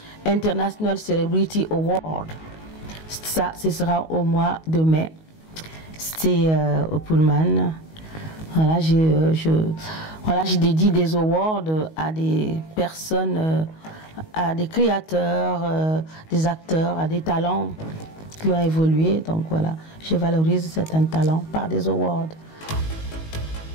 International Celebrity Award. Ça, ce sera au mois de mai. C'est au Pullman. Voilà, je dédie des awards à des personnes, à des créateurs, des acteurs, à des talents qui ont évolué. Donc voilà, je valorise certains talents par des awards.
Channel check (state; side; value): late; right; 19 ms